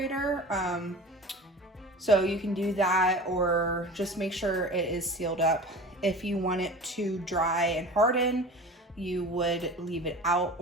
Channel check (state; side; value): normal; both; correlation 0.37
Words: So you can do that, or just make sure it is sealed up. If you want it to dry and harden, you would leave it out